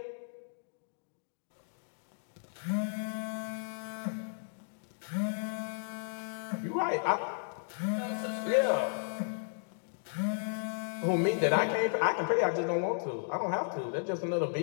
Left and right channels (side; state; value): right; silent; digital silence